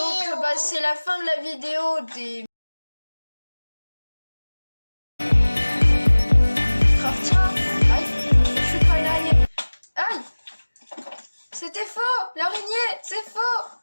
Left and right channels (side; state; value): both; inverted; correlation -1.00